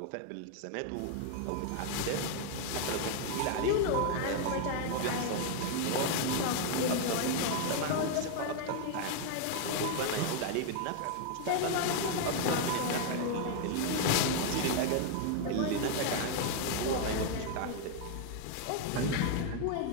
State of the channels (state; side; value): different; both; correlation 0.00